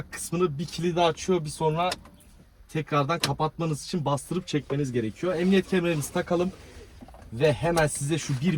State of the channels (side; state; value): both; identical; correlation 1.00